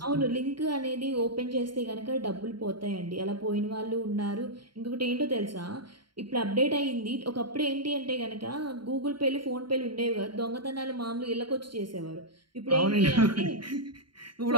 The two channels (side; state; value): left; late; 0.72 ms